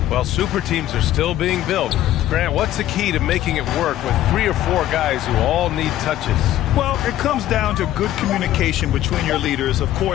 Well, super teams are still being built. Grant, what's the key to making it work with 3 or 4 guys who all need touches? Well, it comes down to good communication between your leaders. Of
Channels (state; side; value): quieter; right; 13.2 dB